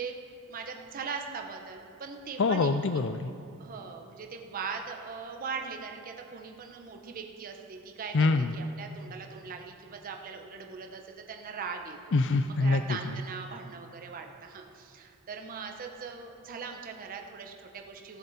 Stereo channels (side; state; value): both; normal; correlation 0.46